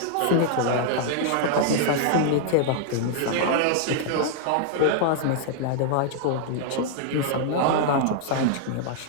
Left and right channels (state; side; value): different; both; correlation -0.01